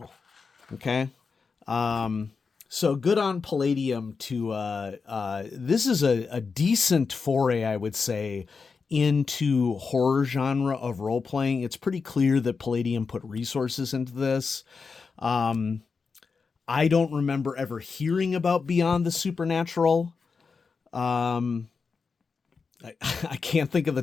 Okay. So good on Palladium to, this is a decent foray, I would say, into horror genre of role-playing. It's pretty clear that Palladium put resources into this. I don't remember ever hearing about Beyond the Supernatural. I can't think of the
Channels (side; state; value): right; quieter; 5.0 dB